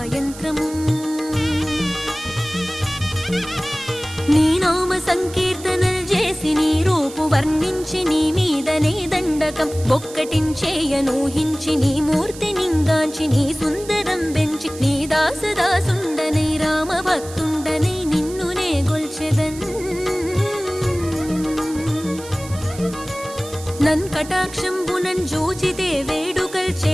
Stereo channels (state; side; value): noise; right; hiss, 16 dB below the sound